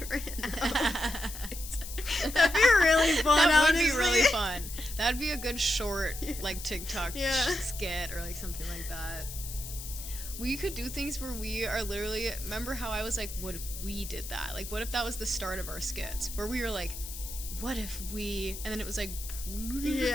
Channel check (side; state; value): left; noise; hiss, 10 dB below the sound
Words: outfits. That'd be really fun. That would honestly. be really fun. That'd be a good short, like TikTok Yeah. skit or like something like that. We could do things where we are literally. Remember how I was like, "What if we did that? Like, what if that was the start of our skits? Where we were like, what if we?" And then it was like,